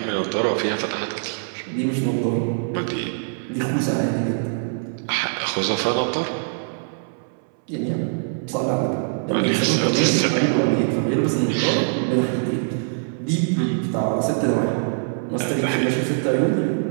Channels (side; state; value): left; silent; 63 dB below the other